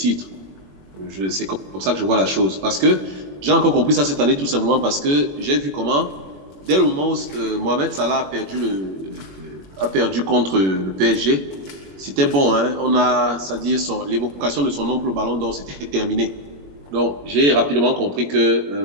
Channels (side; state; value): left; late; 21 ms